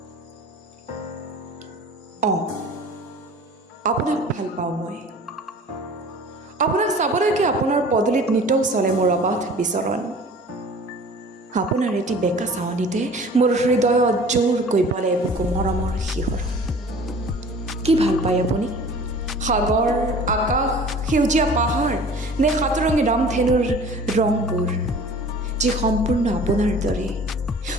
আপোনাক ভাল পাওঁ মই। আপোনাক চাবলৈকে আপোনাৰ পদূলিত নিতৌ চলে মোৰ অবাধ বিচৰণ। আপোনাৰ এটি বেকা চাৱনিতে মোৰ হৃদয়ত জোৰকৈ বলে বুকু মৰমৰ শিহৰণ। কি ভাল পায় আপুনি? সাগৰ, আকাশ, সেউজীয়া পাহাৰ নে সাতৰঙী ৰামধেনুৰ ৰংবোৰ, যি সম্পূৰ্ণ আপোনাৰ দৰে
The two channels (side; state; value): both; normal; correlation 0.45